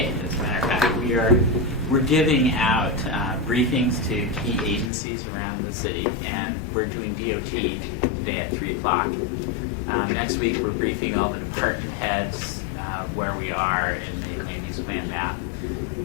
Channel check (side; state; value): right; drops out; at 4.9 s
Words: as a matter of fact, we're giving out briefings to key agencies around the city, and we're doing DOT today at 3 o'clock. Next week, we're briefing all the department heads where we are in the land use plan map,